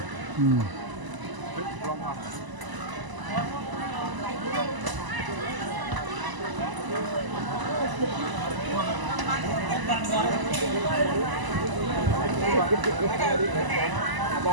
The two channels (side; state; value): left; late; 1.0 ms